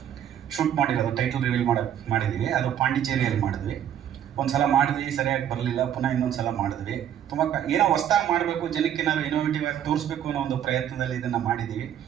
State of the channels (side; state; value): left; quieter; 10.0 dB